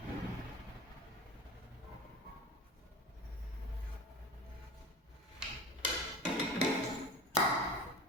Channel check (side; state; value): both; normal; correlation 0.34